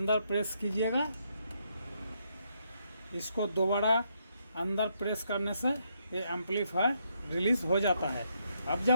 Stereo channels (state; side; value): inverted; both; correlation -0.76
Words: प्रेस कीजिएगा, इसको दोबारा अंदर प्रेस करने से ये एम्पलीफायर रिलीज़ हो जाता है। अब